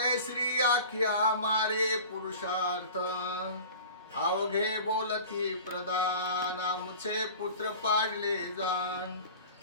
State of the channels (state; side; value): inverted; both; correlation -0.39